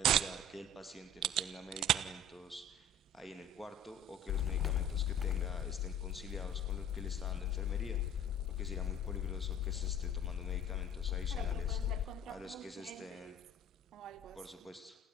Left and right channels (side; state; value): both; normal; correlation 0.46